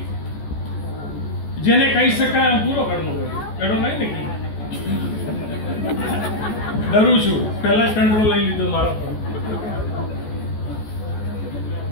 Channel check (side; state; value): right; late; 14 ms